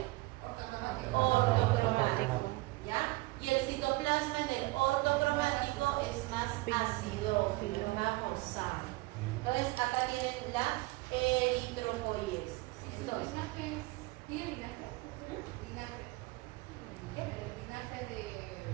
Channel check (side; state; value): left; quieter; 21.6 dB